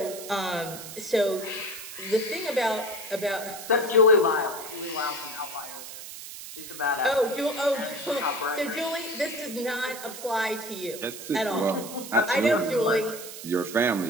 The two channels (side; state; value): right; noise; hiss, 11 dB below the sound